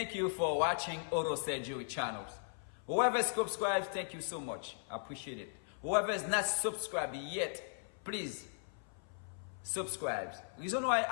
you for watching Auto Surgery channel. Whoever is subscribed, thank you so much. I appreciate it. Whoever is not subscribed yet, please subscribe. Reason why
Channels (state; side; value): silent; right; 53 dB below the other